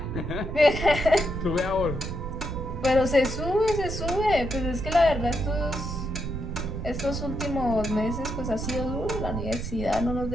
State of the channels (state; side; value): noise; right; rumble, 6 dB below the sound